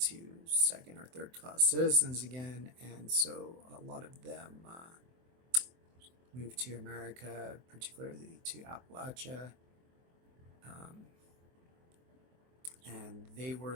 second or third class citizens again. And so a lot of them moved to America, particularly to Appalachia. Um, and they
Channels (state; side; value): late; left; 23 ms